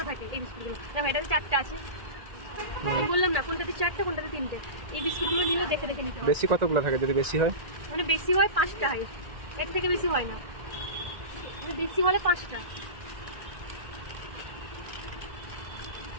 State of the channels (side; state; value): left; late; 1.8 ms